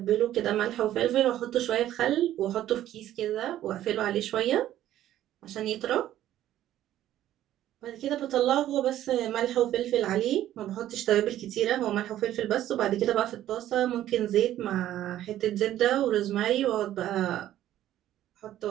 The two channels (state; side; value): quieter; left; 12.7 dB